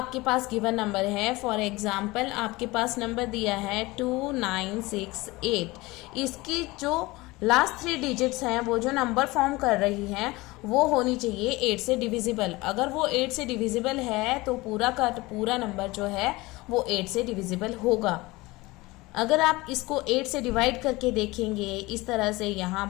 पास given number है, for example आपके पास number दिया है 2968, इसकी जो लास्ट 3 डिजिट्स हैं वो जो नंबर फॉर्म कर रही हैं वो होनी चाहिए 8 से डिविजिबल। अगर वो 8 से डिविजिबल है तो पूरा का पूरा नंबर जो है वो 8 से डिविजिबल होगा। अगर आप इसको 8 से डिवाइड करके देखेंगे इस तरह से, यहाँ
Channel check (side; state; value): right; quieter; 21.5 dB